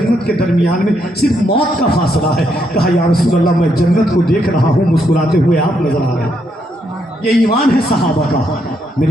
के दरमियान में सिर्फ मौत का फासला है। कहा, या रसूल अल्लाह, मैं जन्नत को देख रहा हूँ, मुस्कुराते हुए आप नजर आ रहे हैं। ये ईमान है सहाबा का।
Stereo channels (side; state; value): both; normal; correlation 0.76